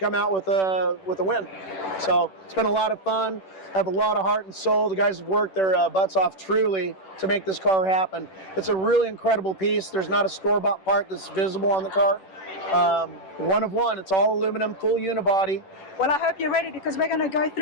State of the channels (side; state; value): right; late; 10 ms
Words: out with a win. So it's been a lot of fun. Have a lot of heart and soul. The guys have worked their butts off truly to make this car happen. It's a really incredible piece. There's not a store-bought part that's visible on the car. One of one. It's all aluminum, full unibody. Well, I hope you're ready because we're going to go